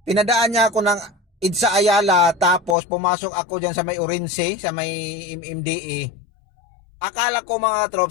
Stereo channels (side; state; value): right; drops out; at 2.8 s